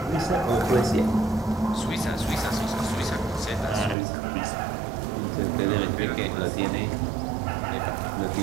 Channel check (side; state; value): left; drops out; at 4.0 s